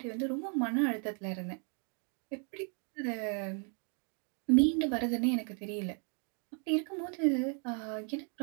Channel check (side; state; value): left; quieter; 39.7 dB